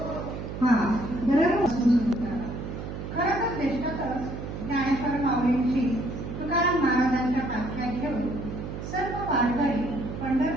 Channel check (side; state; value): right; noise; hum, 7 dB below the sound